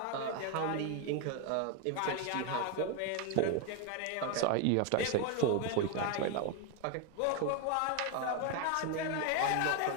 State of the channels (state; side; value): different; both; correlation 0.02